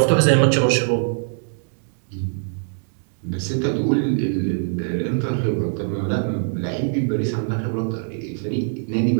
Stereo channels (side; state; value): left; silent; digital silence